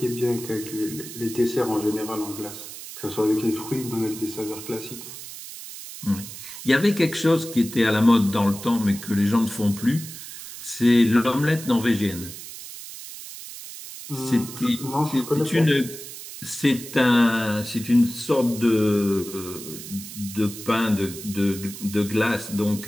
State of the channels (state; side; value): noise; right; hiss, 12 dB below the sound